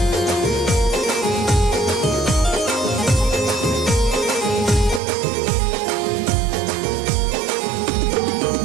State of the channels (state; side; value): drops out; left; at 5.0 s